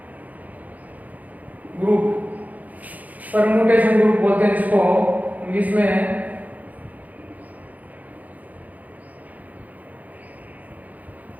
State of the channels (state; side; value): late; left; 0.078 ms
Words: ग्रुप परम्यूटेशन ग्रुप बोलते हैं जिसको इंग्लिश में।